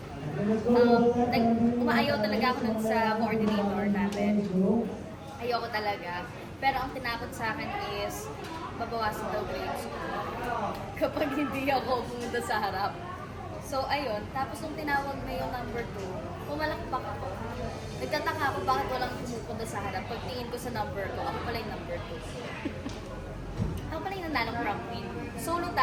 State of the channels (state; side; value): identical; both; correlation 1.00